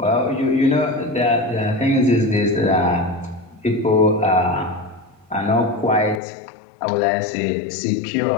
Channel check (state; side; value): drops out; right; at 6.2 s